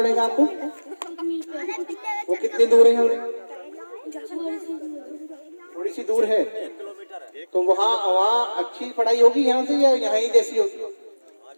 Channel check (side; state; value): both; inverted; correlation -1.00